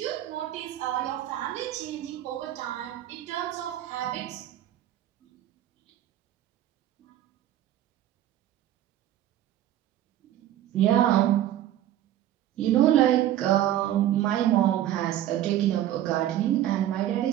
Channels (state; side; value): quieter; left; 12.5 dB